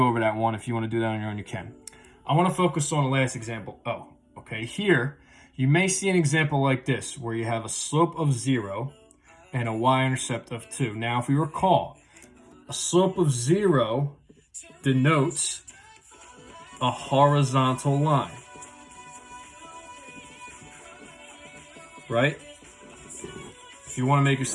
over that one. If you want to do that on your own, you can. I want to focus on the last example, O. Okay, here, you may see an example like this, where you have a slope of 0 and a y-intercept of 2. Now, if we recall, a slope of 0 denotes a horizontal line, right? If you want to make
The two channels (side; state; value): both; identical; correlation 1.00